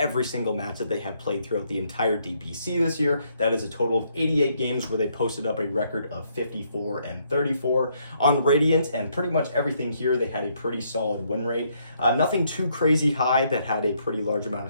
single match that they have played throughout the entire DPC this year. That is a total of 88 games where they posted up a record of 54 and 34. On Radiant and pretty much everything here, they had a pretty solid win rate. Nothing too crazy high that had a pretty large amount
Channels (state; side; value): inverted; both; correlation -0.71